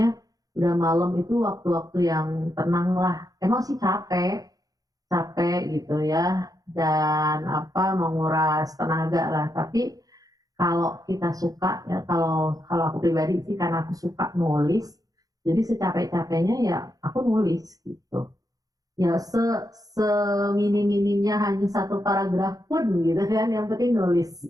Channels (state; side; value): late; left; 0.18 ms